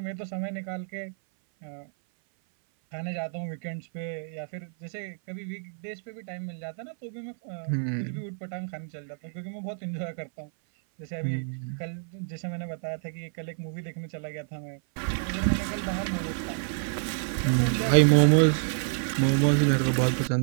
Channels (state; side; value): silent; left; 57 dB below the other